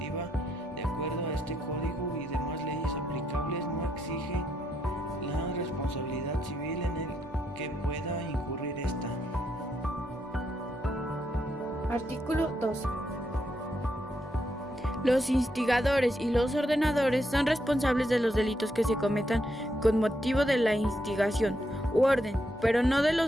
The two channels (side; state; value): both; normal; correlation 0.79